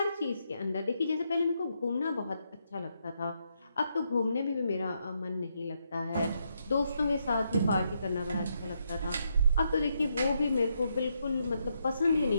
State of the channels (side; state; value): both; inverted; correlation -0.79